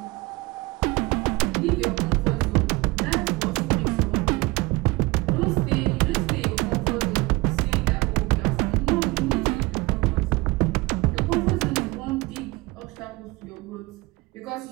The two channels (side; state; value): left; quieter; 22.8 dB